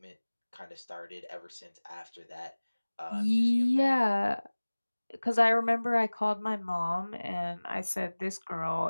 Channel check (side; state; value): both; inverted; correlation -1.00